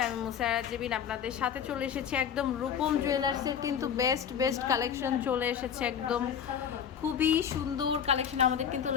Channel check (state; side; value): quieter; right; 8.1 dB